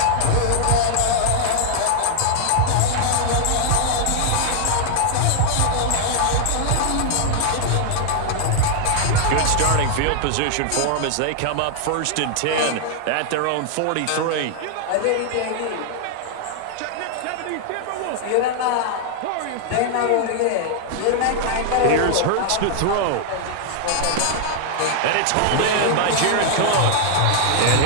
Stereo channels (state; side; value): different; both; correlation -0.01